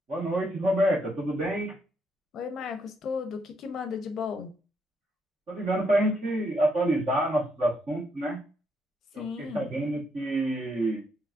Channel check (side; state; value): both; normal; correlation 0.76